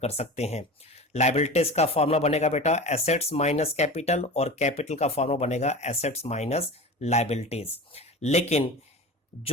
सकते हैं। लायबिलिटीज का फॉर्मूला बनेगा बेटा एसेट्स माइनस कैपिटल और कैपिटल का फॉर्मूला बनेगा एसेट्स माइनस लायबिलिटीज। लेकिन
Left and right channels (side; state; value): both; normal; correlation 0.32